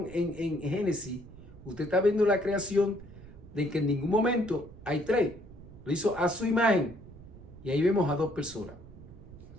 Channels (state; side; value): noise; right; rumble, 18 dB below the sound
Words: en Génesis, usted está viendo la creación de que en ningún momento hay tres. Lo hizo a su imagen. Y ahí vemos a dos personas.